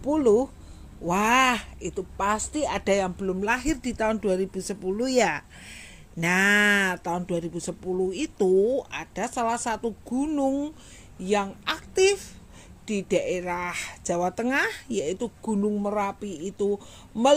wah, itu pasti ada yang belum lahir di tahun 2010 ya. Nah, tahun 2010 itu ada salah satu gunung yang aktif di daerah Jawa Tengah, yaitu Gunung Merapi itu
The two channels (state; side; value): identical; both; correlation 1.00